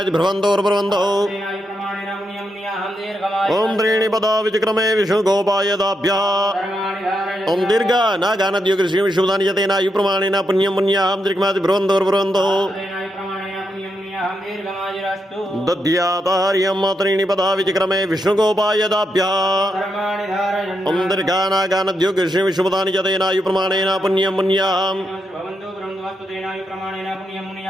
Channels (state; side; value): normal; both; correlation 0.83